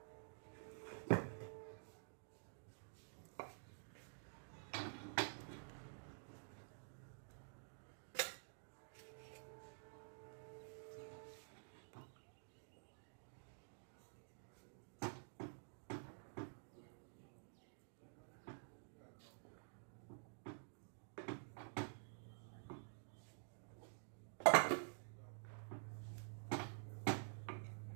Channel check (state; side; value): silent; left; digital silence